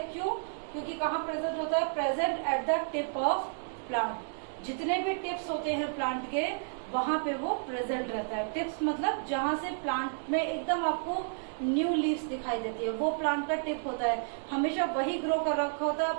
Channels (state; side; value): silent; left; digital silence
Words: क्यों? क्योंकि कहाँ प्रेजेंट होता है? Present at the tip of plant. जितने भी टिप्स होते हैं प्लांट के, वहां पे वो प्रेजेंट रहता है। टिप्स मतलब जहां से प्लांट में एकदम आपको न्यू लीव्स दिखाई देती है, वो प्लांट का टिप होता है। हमेशा वही ग्रो कर रखा होता है।